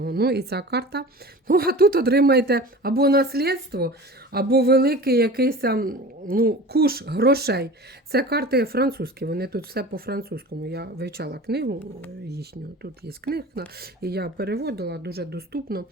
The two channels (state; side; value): normal; both; correlation 0.37